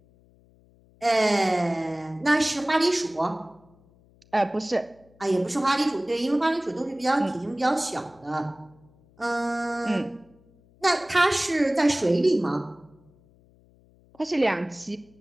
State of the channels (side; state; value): left; noise; hum, 30 dB below the sound